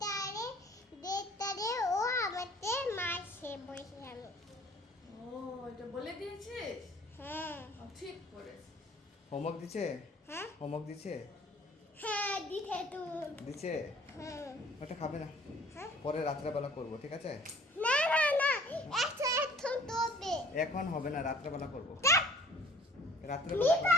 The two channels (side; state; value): both; normal; correlation 0.52